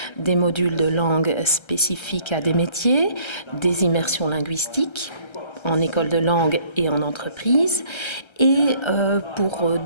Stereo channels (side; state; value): right; late; 1.3 ms